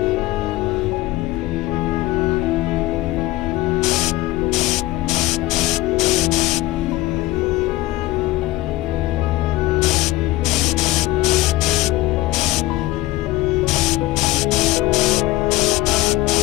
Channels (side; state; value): right; quieter; 17.7 dB